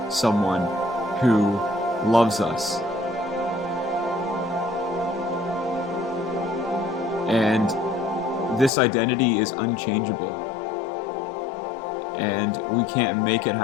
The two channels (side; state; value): right; drops out; at 8.7 s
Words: someone who loves us. And this identity is unchangeable. And we can't make it